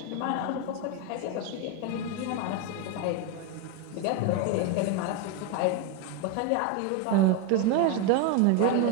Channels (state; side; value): different; both; correlation 0.02